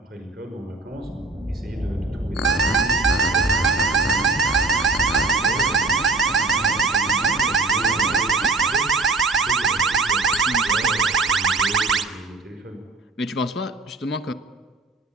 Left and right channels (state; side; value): quieter; left; 3.6 dB